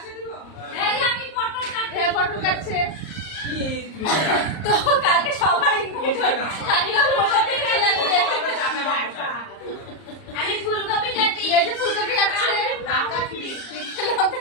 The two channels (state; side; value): late; right; 38 ms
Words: পটল কাটছে তো কালকে সবার আমি ফুলকপি কাটি, এই যে ফুলকপি কাটছে, লঙ্কা